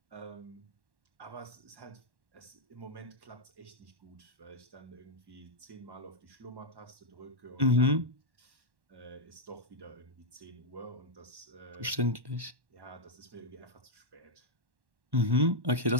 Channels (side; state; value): left; late; 1.1 ms